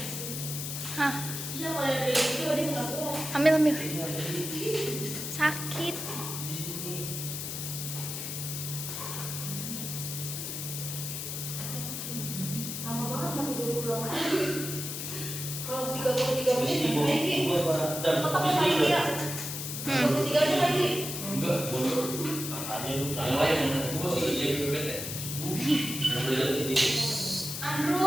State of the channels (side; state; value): left; noise; hiss, 5 dB below the sound